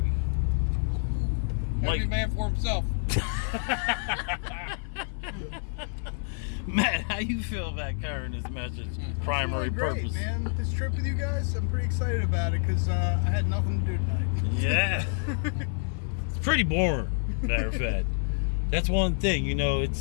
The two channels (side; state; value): right; silent; 59 dB below the other